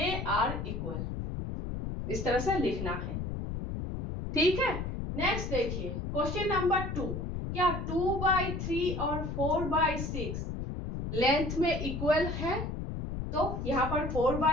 आर इक्वल, इस तरह से लिखना है। ठीक है, नेक्स्ट देखिए क्वेश्चन नंबर 2, क्या 2/3 और 4/6 लेंथ में इक्वल है? तो यहां पर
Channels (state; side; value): noise; left; rumble, 4 dB below the sound